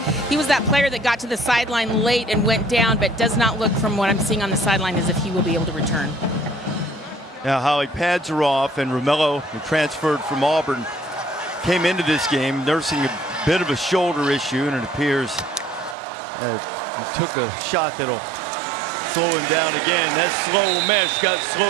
He was that player that got to the sideline late and went down, but does not look, from what I'm seeing on the sideline, as if he will be able to return. Now, Holly, pads are off, and Romello, who transferred from Auburn, came into this game nursing a bit of a shoulder issue, and it appears he took a shot that'll slow him down again. That slow mesh got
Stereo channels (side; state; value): left; drops out; at 16.0 s